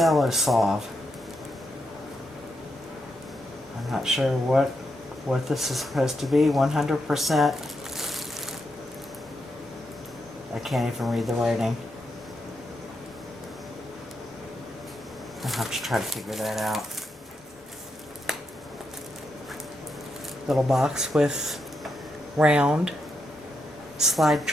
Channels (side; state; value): both; normal; correlation 0.83